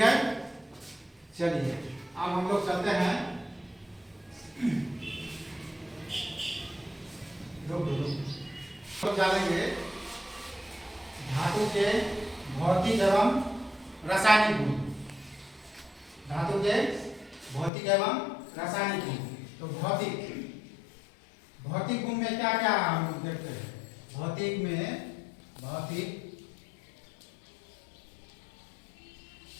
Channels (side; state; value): right; drops out; at 17.7 s